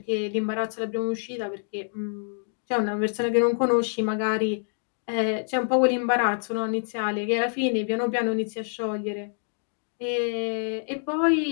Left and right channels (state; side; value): silent; right; digital silence